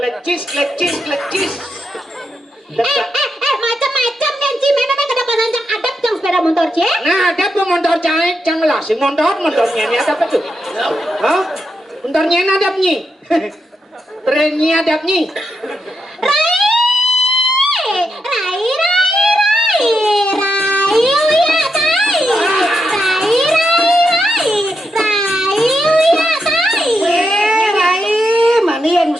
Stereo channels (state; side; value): normal; both; correlation 0.84